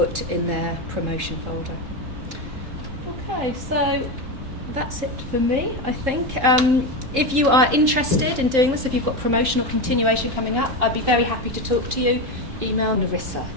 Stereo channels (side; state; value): left; late; 3.7 ms